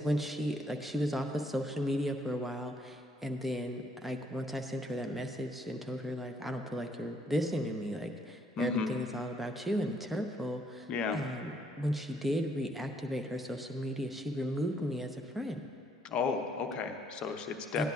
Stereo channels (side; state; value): both; normal; correlation 0.69